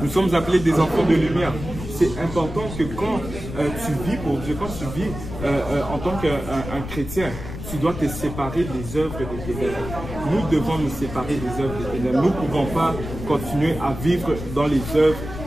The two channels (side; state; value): left; noise; rumble, 9 dB below the sound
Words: Nous sommes appelés des enfants de lumière. C'est important que quand tu vis pour Dieu, quand tu vis en tant qu'un chrétien, tu dois te séparer des œuvres des ténèbres. Nous devons nous séparer des œuvres des ténèbres. Nous ne pouvons pas continuer à vivre dans les œuvres